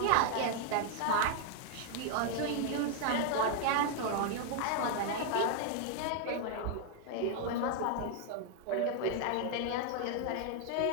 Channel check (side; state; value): both; different; correlation 0.00